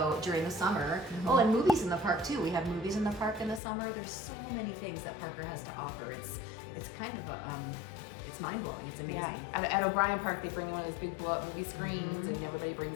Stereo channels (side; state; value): right; drops out; at 3.6 s